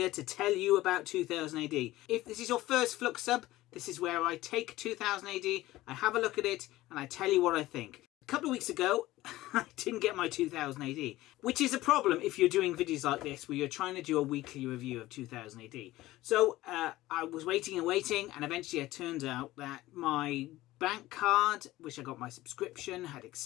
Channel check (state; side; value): quieter; right; 17.0 dB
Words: to tell you about 2000 AD. If this is your first Flux Sub, this is where I take 2000 AD, I have a look at it, and I tell you what I think. A couple of weeks ago, I didn't get my 2000 AD, which is a problem if you're doing videos like this where you're trying to do a weekly review of 2000 AD. So I was waiting, and eventually it turned out that my bank card, which I got my subscription, had